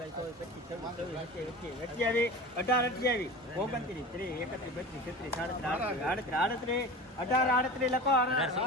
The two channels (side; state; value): both; normal; correlation 0.33